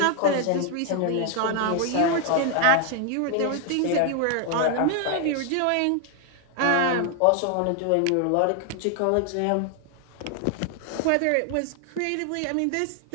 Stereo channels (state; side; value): different; both; correlation 0.00